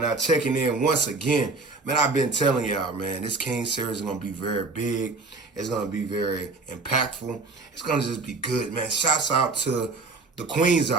checking in once again. Man, I've been telling y'all, man, this King Series is going to be very big. It's going to be very impactful. It's going to just be good, man. Shouts out to the queens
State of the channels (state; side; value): quieter; left; 3.8 dB